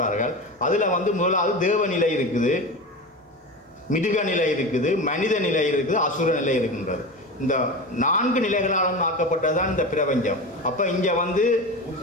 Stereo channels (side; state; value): both; normal; correlation 0.26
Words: அதில் முதலாவது தேவநிலை இருக்குது, மிருக நிலை இருக்குது, மனித நிலை இருக்குது, அசுர நிலை இருக்கின்றது. இந்த 4 நிலைகளாலும் ஆக்கப்பட்டதுதான் இந்த பிரபஞ்சம். அப்போ இங்கே